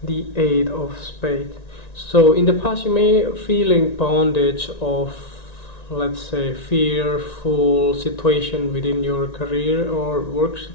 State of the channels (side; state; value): right; late; 1.9 ms